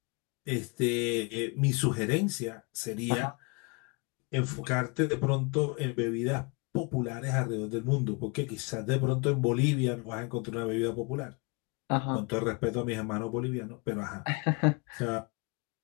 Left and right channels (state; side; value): quieter; right; 30.7 dB